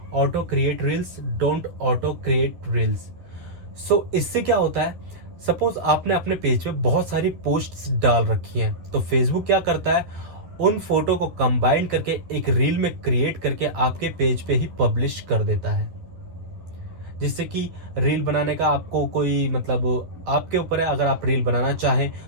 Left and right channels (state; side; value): late; left; 11 ms